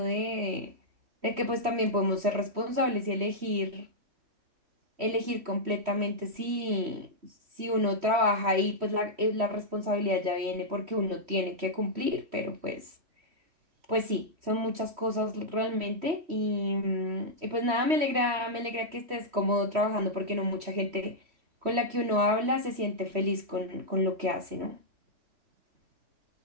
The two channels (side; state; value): left; late; 3.1 ms